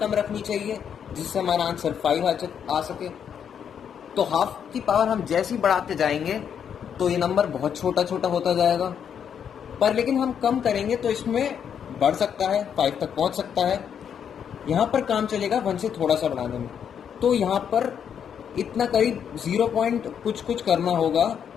रखनी चाहिए जिससे हमारा आंसर 5 आ सके। तो हाफ की पावर हम जैसे ही बढ़ाते जाएंगे तो ये नंबर बहुत छोटा छोटा होता जाएगा, पर लेकिन हम कम करेंगे तो इसमें बढ़ सकता है, 5 तक पहुंच सकता है। यहाँ पर काम चलेगा 1 से थोड़ा सा बढ़ाने में, तो यहाँ पर इतना करीब 0 पॉइंट कुछ करना होगा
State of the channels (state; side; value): quieter; right; 8.1 dB